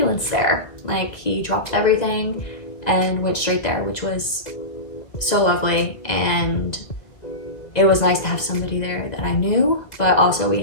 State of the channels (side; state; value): right; late; 2.2 ms